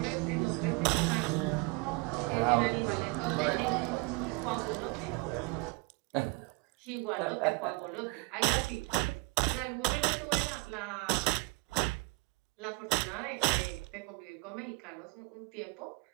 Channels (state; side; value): quieter; left; 26.6 dB